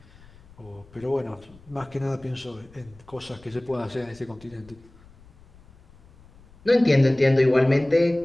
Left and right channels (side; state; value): left; noise; rumble, 25 dB below the sound